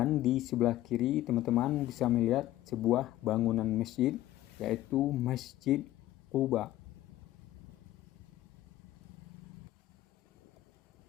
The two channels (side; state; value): right; quieter; 14.9 dB